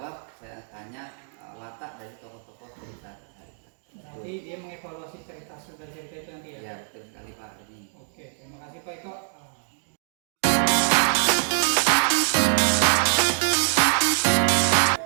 saya tanya watak dari tokoh-tokoh cerita tadi. Nanti dia mengevaluasi cerita itu nanti ya? Ya, betul sekali Pak. Ini. Oke, terima kasih Pak Eko.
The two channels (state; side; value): silent; left; digital silence